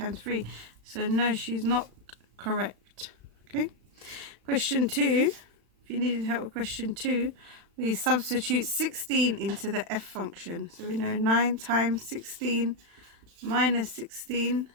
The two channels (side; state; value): left; late; 35 ms